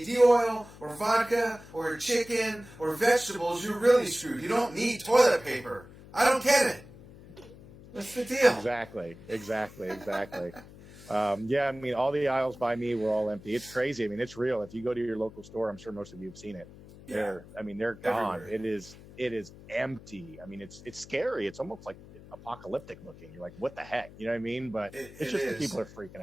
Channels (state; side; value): noise; left; hum, 19 dB below the sound